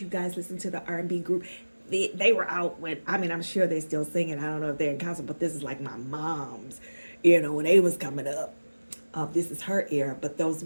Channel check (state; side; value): inverted; both; correlation -1.00